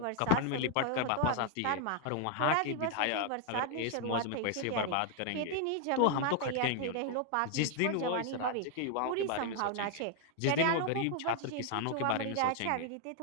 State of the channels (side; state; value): both; different; correlation 0.00